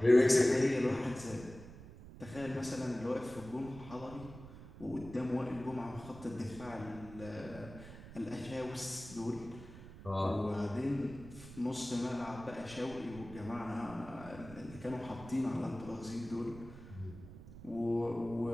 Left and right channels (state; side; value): noise; right; rumble, 15 dB below the sound